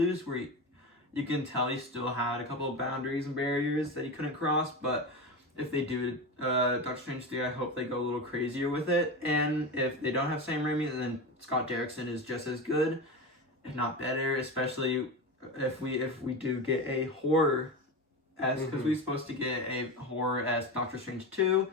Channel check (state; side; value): normal; both; correlation 0.22